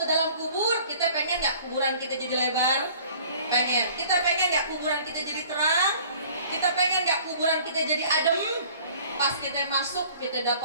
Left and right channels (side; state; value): both; inverted; correlation -0.51